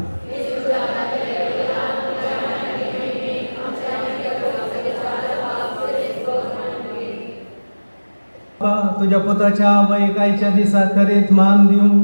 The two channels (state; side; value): inverted; both; correlation -1.00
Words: तुझ्या पुताच्या वैकायच्या दिसा खरेंच मान दिवं